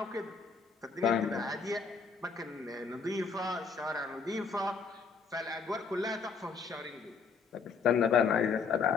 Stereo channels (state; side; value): quieter; right; 5.2 dB